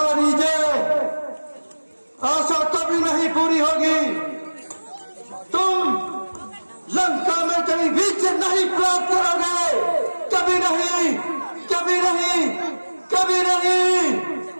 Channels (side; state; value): both; inverted; correlation -1.00